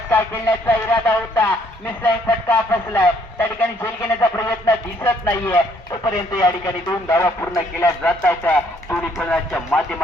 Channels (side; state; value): both; normal; correlation 0.66